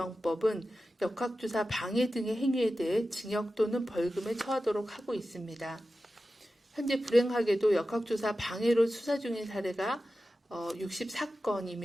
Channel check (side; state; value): both; normal; correlation 0.93